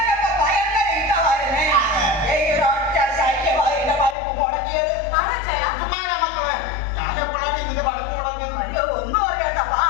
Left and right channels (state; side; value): drops out; right; at 4.2 s